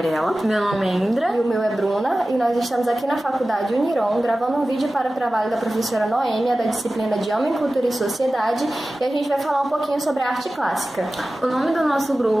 Meu nome é Indra. E o meu é Bruna. E nós estamos aqui na Faculdade Uniron gravando um vídeo para o trabalho da professora Noêmia da disciplina de Homem, Cultura e Sociedade. E a gente vai falar um pouquinho sobre a arte clássica. O nome do nosso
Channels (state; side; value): normal; both; correlation 0.96